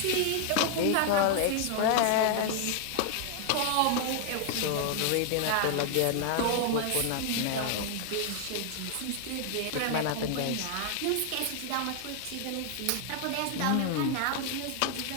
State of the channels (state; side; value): different; both; correlation 0.00